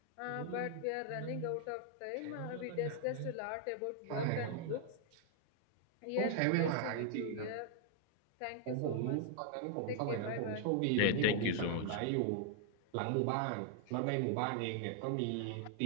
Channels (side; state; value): both; different; correlation 0.00